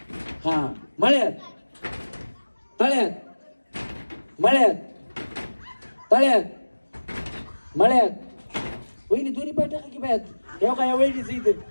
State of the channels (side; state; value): both; inverted; correlation -1.00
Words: हा मळ्यात. तळ्यात. मळ्यात. तळ्यात. मळ्यात. वहिनी दोन्ही पाय टाका की पायात. येऊ का या वहिनीच इथे